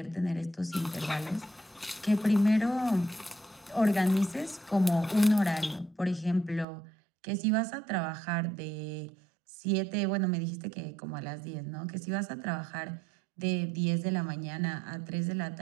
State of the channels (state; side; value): drops out; left; at 6.7 s